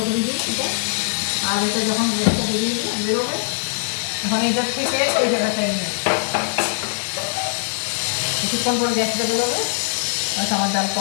করে দিই এটা। আর এটা যখন গ্যাসটা বেরোবে তখন এটার থেকে এই জায়গাটায় নিয়ে কিছুক্ষণ পরে গ্যাসটা বেরোবে, আমার ডাল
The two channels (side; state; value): right; silent; digital silence